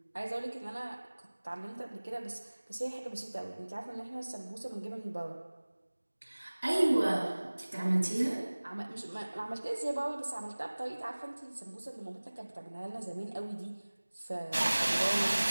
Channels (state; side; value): inverted; both; correlation -1.00